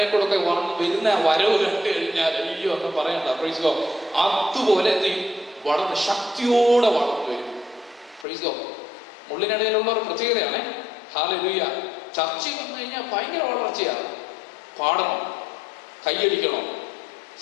കൂടെ ഒക്കെ വരുന്ന വരവ് കണ്ടു കഴിഞ്ഞാൽ അയ്യോ എന്ന് പറയണ്ട. Praise God. അതുപോലെ എന്ത് ചെയ്യും? വളർന്ന് ശക്തിയോടെ വളർന്നു വരും. Praise God. മുള്ളിനിടയിലുള്ള ഒരു പ്രത്യേകതയാണ്. ഹല്ലേലൂയ. ചർച്ചയിൽ വന്നു കഴിഞ്ഞാൽ ഭയങ്കര വളർച്ചയാണ്. പാടണം, കൈയടിക്കണോ,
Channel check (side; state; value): right; drops out; at 8.2 s